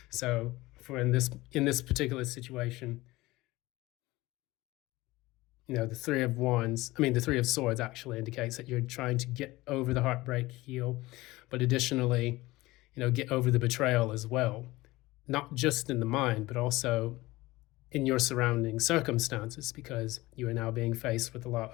So in this particular situation, the Three of Swords actually indicates that you're trying to get over the heartbreak, heal, but additionally, get over the betrayal as well, not just in the mind, but also in your surrounding circumstances, because you are now being faced with a lot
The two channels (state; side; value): quieter; right; 19.5 dB